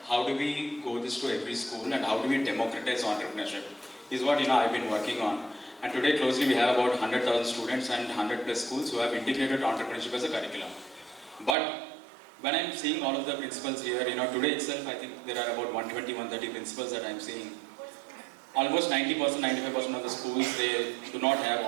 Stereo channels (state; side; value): drops out; left; at 11.6 s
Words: how do we go this to every school, and how do we democratize entrepreneurship is what, I've been working on. And today closely we have about 100,000 students and 100 plus schools who have integrated entrepreneurship as a curriculum. But when I'm seeing all of the principals here, today itself I think there are about 120, 130 principals that I'm seeing. Almost 90%, 95% of the schools, they do not have